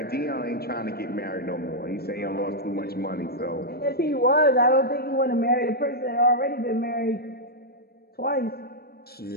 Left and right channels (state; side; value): late; right; 0.46 ms